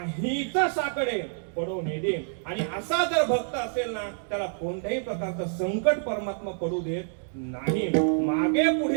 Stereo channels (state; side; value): silent; left; digital silence